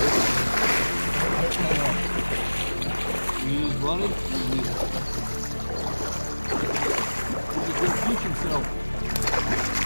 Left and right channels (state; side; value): inverted; both; correlation -1.00